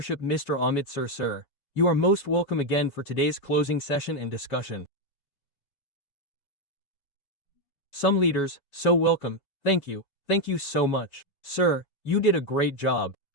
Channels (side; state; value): right; late; 5.0 ms